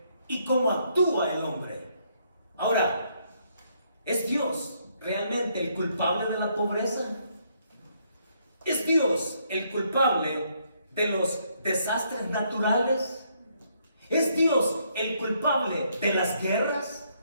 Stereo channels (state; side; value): inverted; both; correlation -0.71